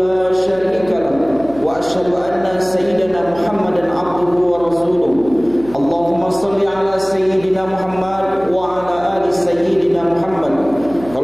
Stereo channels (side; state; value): right; noise; hum, 18 dB below the sound